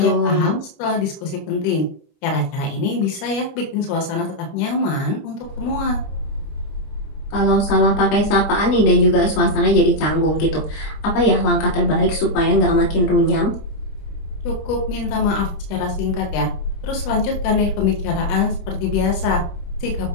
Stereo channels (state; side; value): late; right; 26 ms